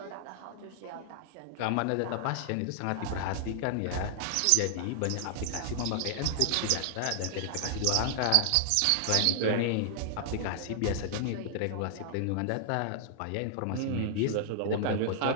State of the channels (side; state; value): both; different; correlation -0.01